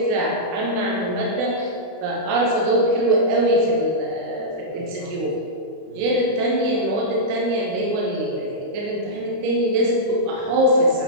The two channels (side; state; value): left; late; 31 ms